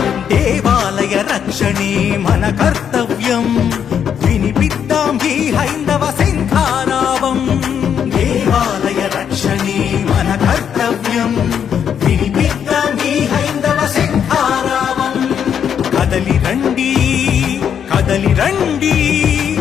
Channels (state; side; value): quieter; right; 8.2 dB